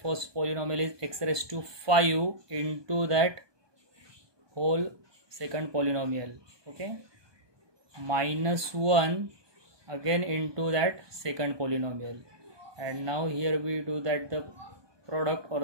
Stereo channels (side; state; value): left; late; 1.2 ms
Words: first polynomial is x raised to 5 into that whole second polynomial. Okay, minus 1 again into that second polynomial, and now here we do that the product